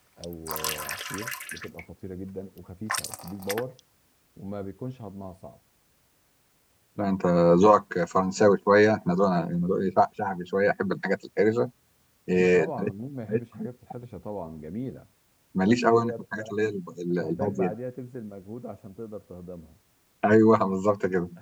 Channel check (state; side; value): identical; both; correlation 1.00